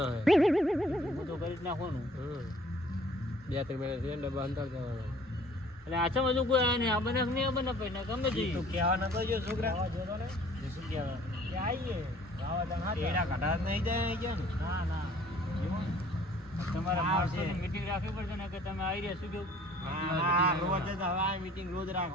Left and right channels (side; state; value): both; normal; correlation 0.54